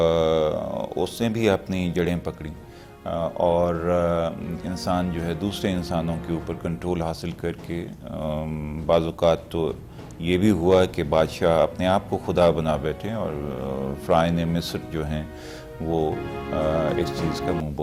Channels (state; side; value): identical; both; correlation 1.00